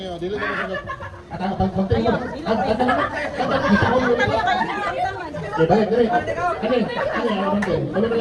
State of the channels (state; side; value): identical; both; correlation 1.00